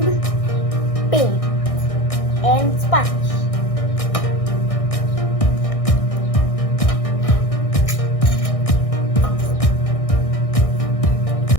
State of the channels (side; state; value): right; late; 1.6 ms